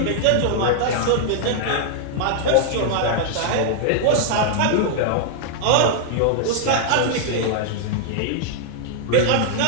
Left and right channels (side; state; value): both; different; correlation -0.01